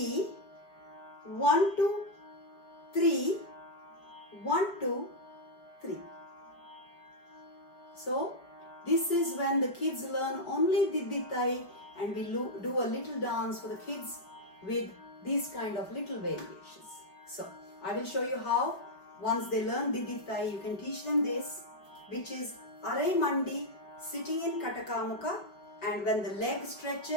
1, 2, 3, 1, 2, 3. So this is when the kids learn only did, tai, and we do a little dance for the kids with these kind of little variations. So I will show you how once they learn did, tai, you can teach them this, which is Arai Mandi, sitting in Katakamuka, and when the leg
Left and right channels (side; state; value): right; late; 5.4 ms